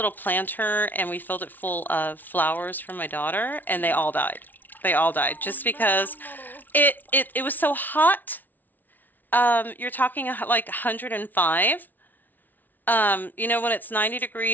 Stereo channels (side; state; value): right; late; 0.084 ms